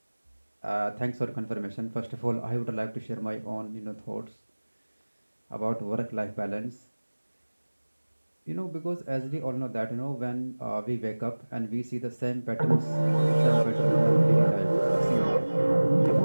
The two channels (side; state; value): both; inverted; correlation -1.00